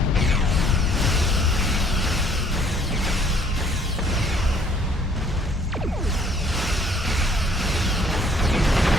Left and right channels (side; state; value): both; normal; correlation 0.60